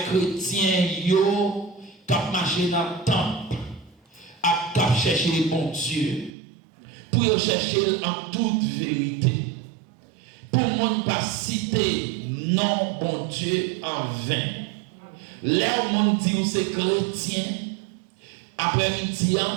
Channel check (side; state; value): left; drops out; at 6.3 s